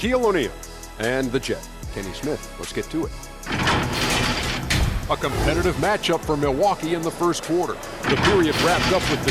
O'Neal and the Jet, Kenny Smith. Let's get to it. A competitive matchup for Milwaukee in the first quarter. The period wrapped up with the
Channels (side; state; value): both; identical; correlation 1.00